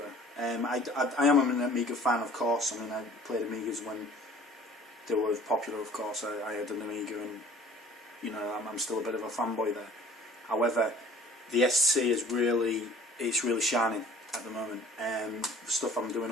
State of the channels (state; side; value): normal; both; correlation 0.50